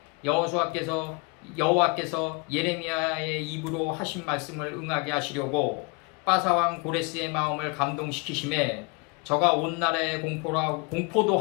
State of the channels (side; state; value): right; quieter; 30.3 dB